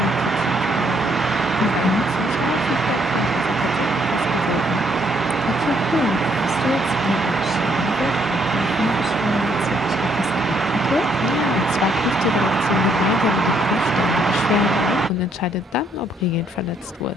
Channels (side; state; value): both; normal; correlation 0.70